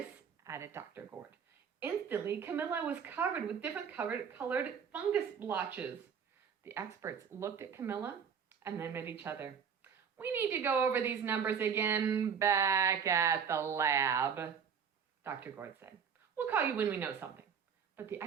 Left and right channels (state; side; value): quieter; left; 7.0 dB